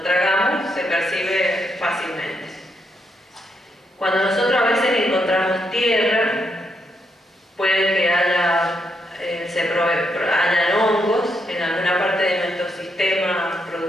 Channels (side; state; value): both; normal; correlation 0.79